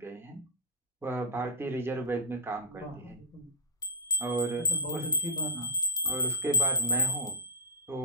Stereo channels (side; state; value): both; normal; correlation -0.02